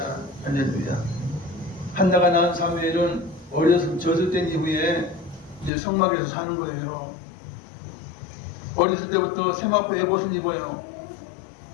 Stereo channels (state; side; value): drops out; right; at 5.7 s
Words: 할렐루야. 한나가 낳은 사무엘은 어려서 젖을 뗀 이후에 이제 성막에서 사는 거예요. 어렸을 때부터 세마포 에봇을 입어요.